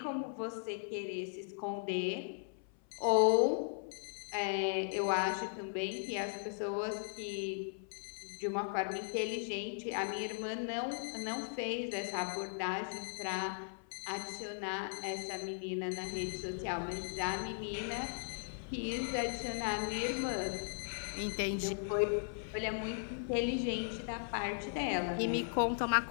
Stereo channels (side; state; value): right; silent; 53 dB below the other